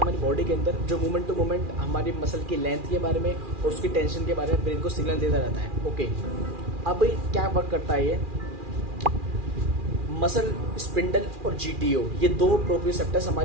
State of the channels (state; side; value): late; left; 2.4 ms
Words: हमारी बॉडी के अंदर, जो मोमेंट टू मोमेंट हमारी मसल की लेंथ के बारे में और उसकी टेंशन के बारे में ब्रेन को सिग्नल देता रहता है। ओके, अब क्या वर्क करता है ये मसल स्पिंडल और जीटीओ, ये दो प्रोप्रियोसेप्टर्स